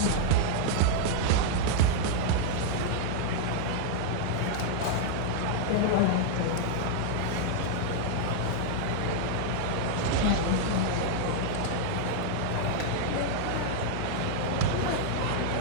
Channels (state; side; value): different; both; correlation 0.00